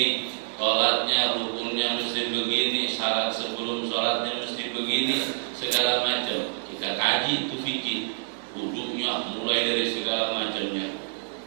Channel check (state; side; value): silent; left; 60 dB below the other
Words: sholatnya, rukunnya mesti begini, syarat sebelum sholatnya mesti begini, segala macam. Kita kaji itu fikih. Wudunya mulai dari segala macamnya,